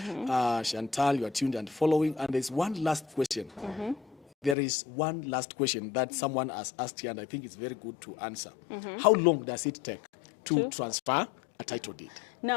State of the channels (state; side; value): drops out; right; at 4.5 s